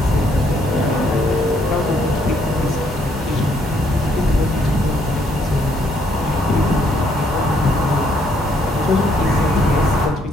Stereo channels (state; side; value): normal; both; correlation 0.69